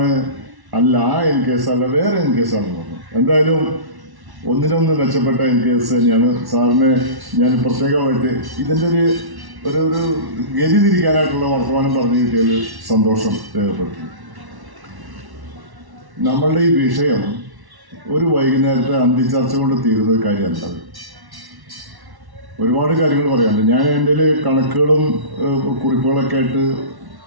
അല്ല ആ NKS അല്ല വേറെ NKS ആണെന്ന് പറഞ്ഞു. എന്തായാലും ഒന്നിനൊന്ന് മെച്ചപ്പെട്ട NKS തന്നെയാണ്. സാറിനെ ഞാൻ പ്രത്യേകമായിട്ട് ഇതിൻ്റെ ഒരു ഗതി തിരിക്കാനായിട്ടുള്ള വർത്തമാനം പറഞ്ഞു കിട്ടിയതിൽ സന്തോഷം രേഖപ്പെടുത്തുന്നു. നമ്മളുടെ ഈ വിഷയം ഒരു വൈകുന്നേരത്തെ അന്തിച്ചർച്ച കൊണ്ട് തീരുന്ന ഒരു കാര്യമല്ല. ഒരുപാട് കാര്യങ്ങൾ പറയാനുണ്ട്. ഞാൻ എൻ്റെ കണക്കുകളും കുറിപ്പുകളൊക്കെ ആയിട്ട്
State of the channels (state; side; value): late; left; 1.1 ms